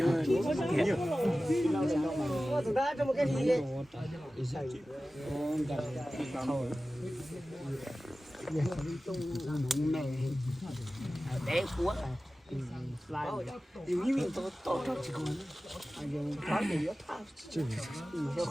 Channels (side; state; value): both; normal; correlation 0.96